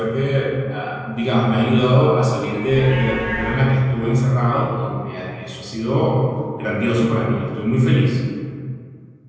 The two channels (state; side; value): identical; both; correlation 1.00